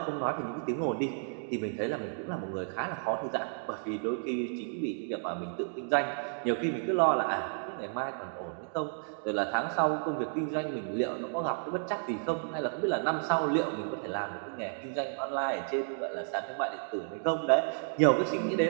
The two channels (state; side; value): silent; left; digital silence